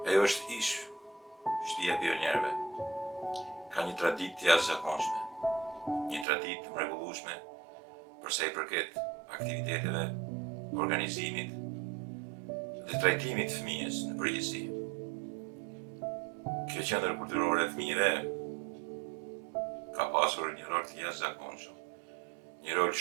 Ajo është ish shtëpia e pionierëve. Ka një traditë të jashtëzakonshme, një traditë të mrekullueshme për sa I përket aktiviteteve, organizimit dhe trajtimit të fëmijës në përgjithësi. Kjo qendër kulturore e fëmijëve ka pasur një rol të jashtëzakonshëm, një rol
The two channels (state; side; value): drops out; left; at 6.2 s